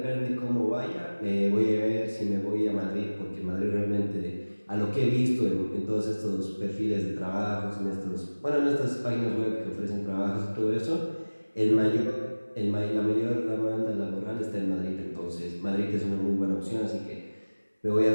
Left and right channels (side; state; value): both; inverted; correlation -1.00